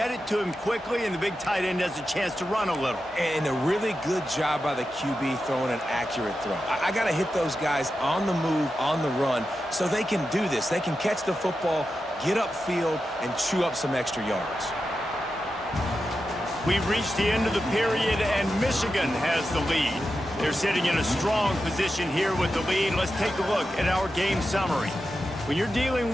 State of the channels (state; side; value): normal; both; correlation 0.90